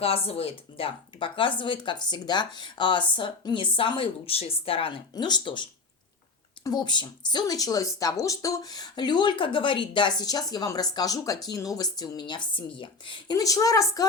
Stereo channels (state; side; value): quieter; right; 4.0 dB